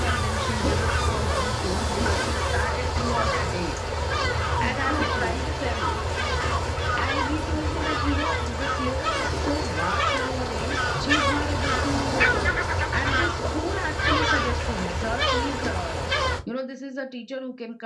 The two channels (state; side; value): identical; both; correlation 1.00